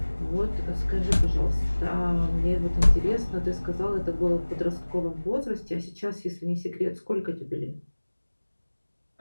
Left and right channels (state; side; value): inverted; both; correlation -1.00